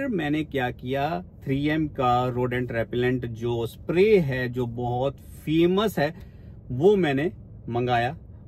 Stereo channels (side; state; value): both; identical; correlation 1.00